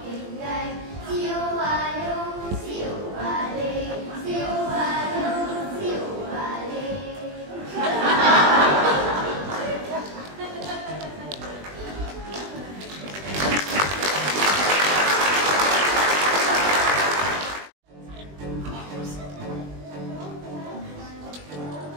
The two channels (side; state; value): left; late; 20 ms